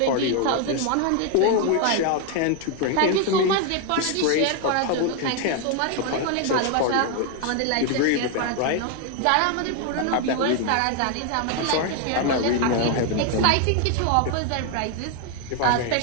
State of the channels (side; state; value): both; different; correlation 0.01